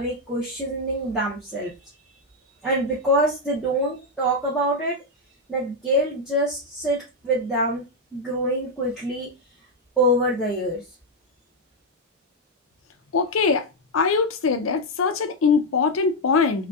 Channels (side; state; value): both; normal; correlation 0.02